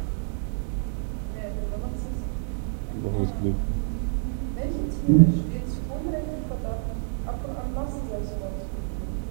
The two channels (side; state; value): left; silent; 60 dB below the other